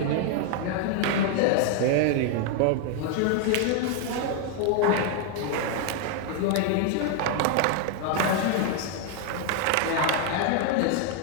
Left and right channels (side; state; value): both; different; correlation 0.01